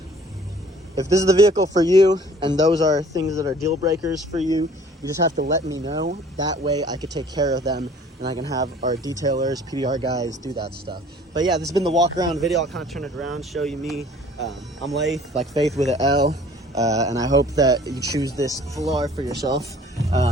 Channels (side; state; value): both; normal; correlation 0.53